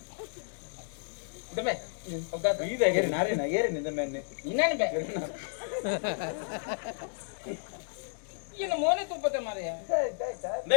ದಮೆ ಒಗ್ಗ ಬೀದ ಏರಿ ನಾರೇನ ಏರಿ ನಿಂದ ಮೇನೆ ಇನ್ನೇನು ಬೇ ಏನು ಮೋನೆ ತುಪ್ಪತೆ ಮಾರಯ್ಯ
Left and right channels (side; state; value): right; silent; digital silence